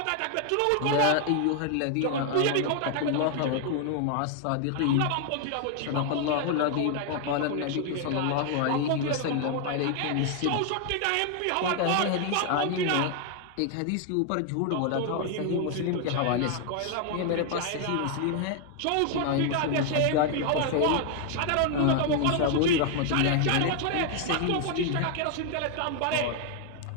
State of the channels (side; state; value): both; different; correlation 0.00